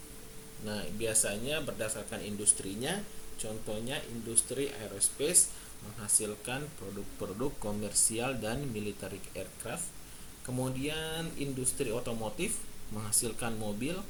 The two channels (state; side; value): identical; both; correlation 1.00